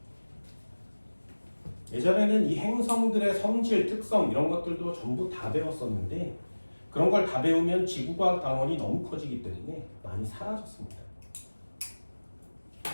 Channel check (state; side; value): inverted; both; correlation -1.00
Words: 예전에는 이 행성들의 성질, 특성 이런 것들도 전부 다 배웠었는데 그런 걸 다 배우면 지구과학 단원이 너무 커지기 때문에 많이 사라졌습니다.